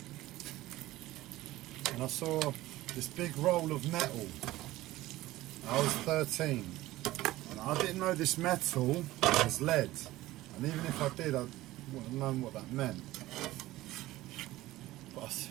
and I saw this big roll of metal. I was 13, and I didn't know this metal was lead, and even if I did, I wouldn't have known what that meant. But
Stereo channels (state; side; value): quieter; left; 16.9 dB